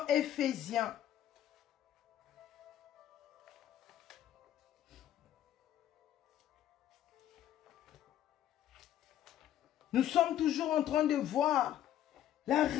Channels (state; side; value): quieter; right; 11.6 dB